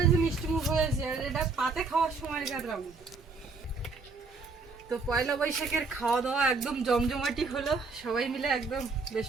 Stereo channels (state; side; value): quieter; left; 4.1 dB